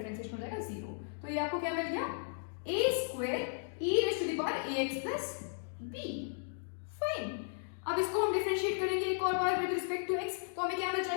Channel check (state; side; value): silent; right; digital silence